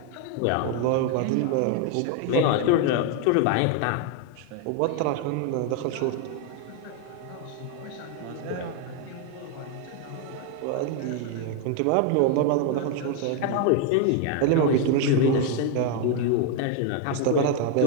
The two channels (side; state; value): both; different; correlation 0.01